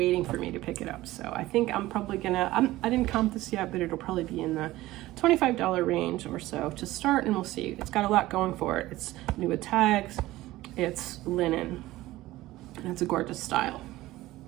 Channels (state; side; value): quieter; left; 17.1 dB